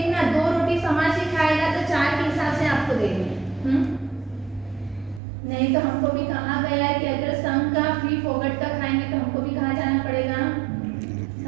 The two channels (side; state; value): left; drops out; at 5.2 s